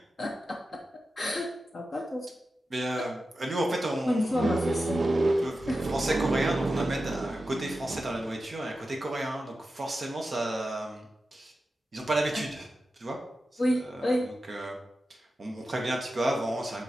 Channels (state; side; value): normal; both; correlation 0.92